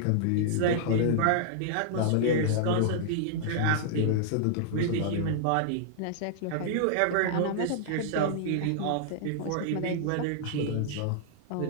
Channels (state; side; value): different; both; correlation -0.01